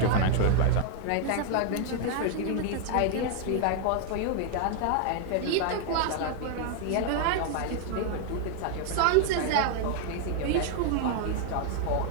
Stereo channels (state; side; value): different; both; correlation 0.00